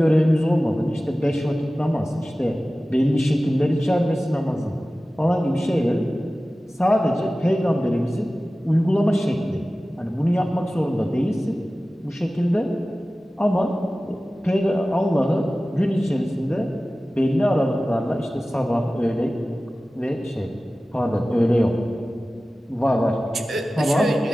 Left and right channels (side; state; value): both; normal; correlation 0.96